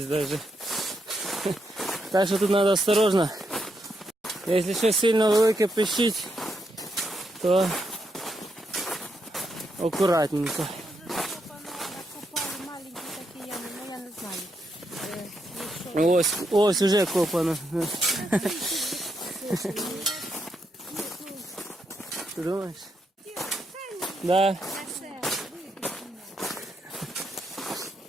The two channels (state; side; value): normal; both; correlation 0.80